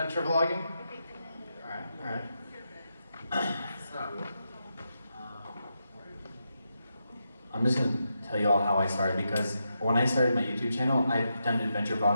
vlogging? All right. So, I'm just going to tell you all how I started, because when I started my YouTube channel, I've done adventure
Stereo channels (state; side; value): inverted; both; correlation -0.85